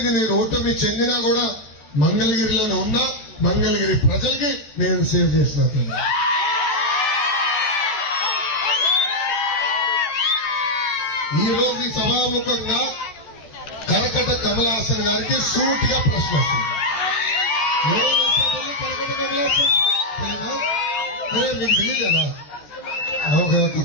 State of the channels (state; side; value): late; right; 14 ms